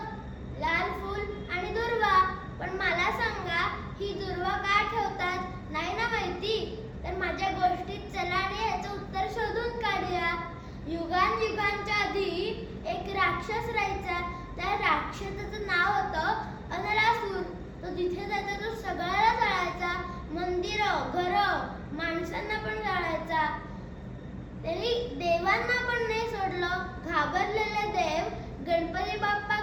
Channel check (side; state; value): both; identical; correlation 1.00